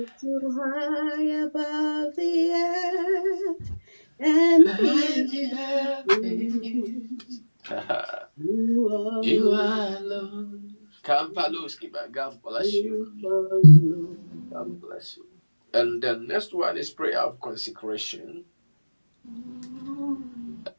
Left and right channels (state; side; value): inverted; both; correlation -1.00